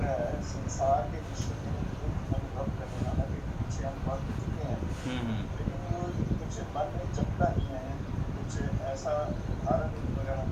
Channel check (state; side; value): identical; both; correlation 1.00